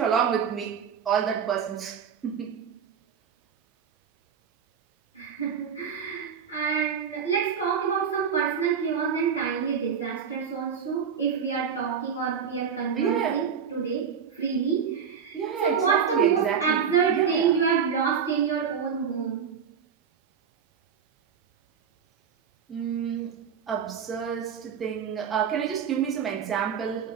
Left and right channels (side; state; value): left; quieter; 7.1 dB